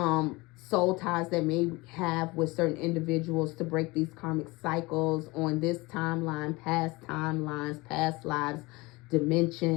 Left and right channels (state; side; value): quieter; right; 23.1 dB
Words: ties that may have with certain individuals to break these karmic cycles on this timeline, past timelines, past lives,